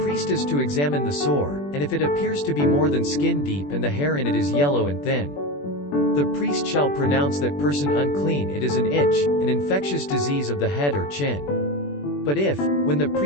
priest is to examine the sore, and if it appears to be more than skin deep and the hair in it is yellow and thin, the priest shall pronounce that person unclean. It is an itch, an infectious disease of the head or chin. But if, when the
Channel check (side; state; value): right; late; 21 ms